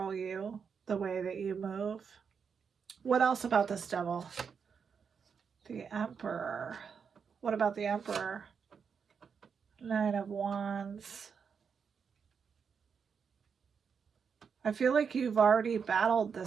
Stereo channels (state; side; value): quieter; left; 6.3 dB